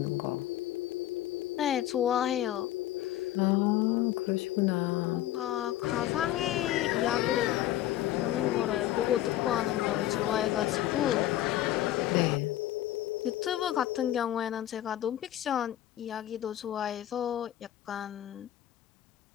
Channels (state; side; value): quieter; right; 13.5 dB